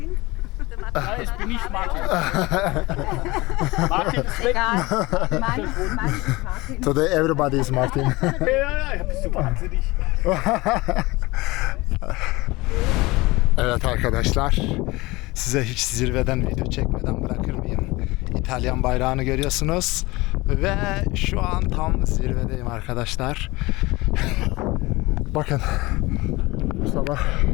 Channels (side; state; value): right; quieter; 21.7 dB